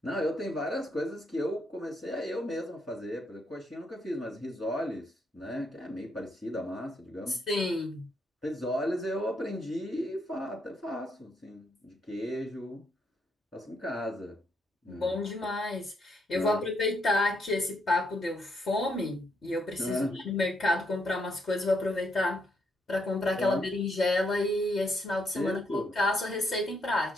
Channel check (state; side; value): normal; both; correlation 0.76